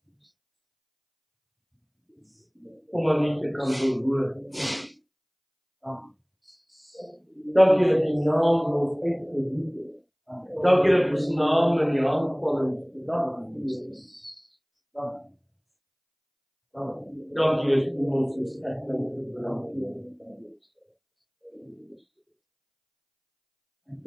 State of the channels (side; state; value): both; identical; correlation 1.00